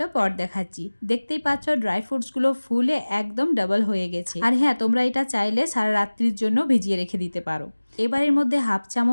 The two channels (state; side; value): inverted; both; correlation -1.00